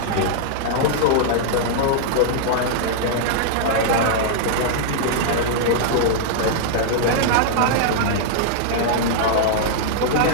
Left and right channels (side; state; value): both; different; correlation -0.01